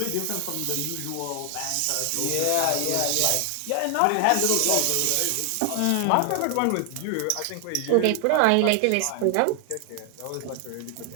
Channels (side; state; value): both; different; correlation 0.00